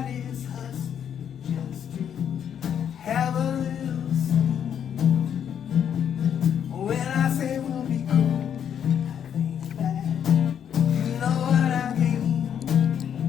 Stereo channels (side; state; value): right; quieter; 8.7 dB